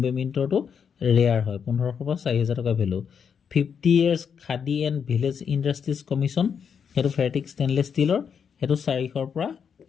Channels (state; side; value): quieter; right; 7.0 dB